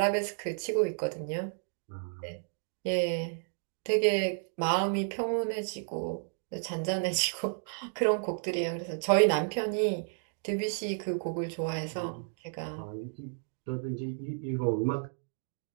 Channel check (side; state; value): left; silent; digital silence